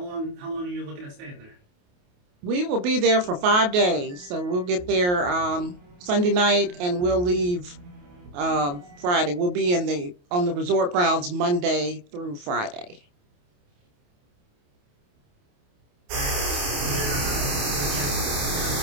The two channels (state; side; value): late; left; 28 ms